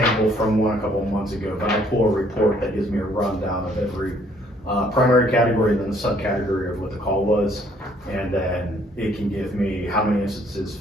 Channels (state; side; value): normal; both; correlation 0.63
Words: from one a couple of months ago. But I pull a report that gives me a rundown of every primary category and then the subcategory of what the call was, and then it can give me how many instances